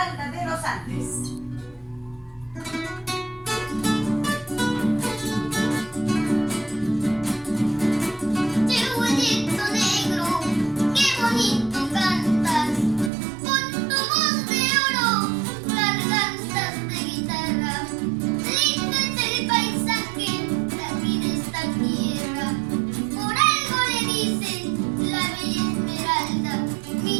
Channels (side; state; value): left; drops out; at 13.1 s